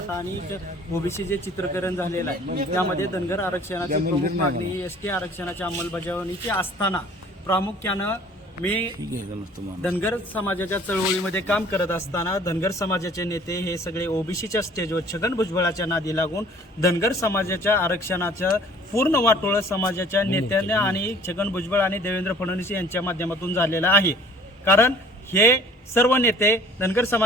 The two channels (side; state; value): both; normal; correlation 0.52